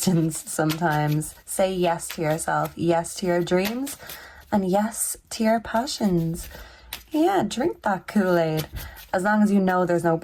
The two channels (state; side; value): identical; both; correlation 1.00